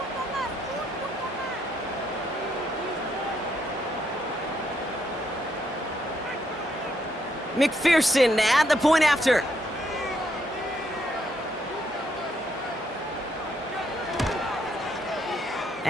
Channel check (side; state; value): both; normal; correlation 0.75